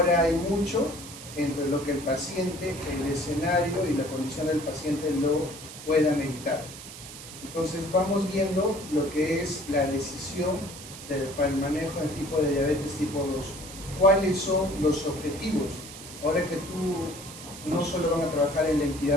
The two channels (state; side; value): noise; right; hiss, 13 dB below the sound